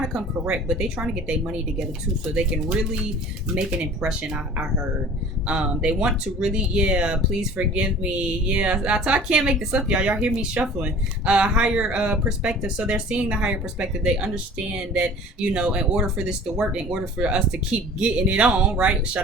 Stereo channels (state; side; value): normal; both; correlation 0.45